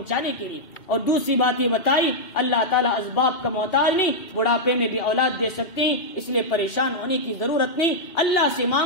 کے لیے. اور دوسری بات یہ بتائی اللہ تعالیٰ اسباب کا محتاج نہیں، بڑھاپے میں بھی اولاد دے سکتے ہیں، اس لیے پریشان ہونے کی ضرورت نہیں. اللہ سے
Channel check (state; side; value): late; right; 2.4 ms